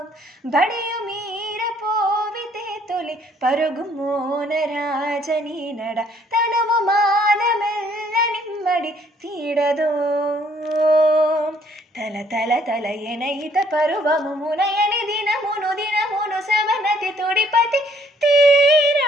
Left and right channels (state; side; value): normal; both; correlation 0.64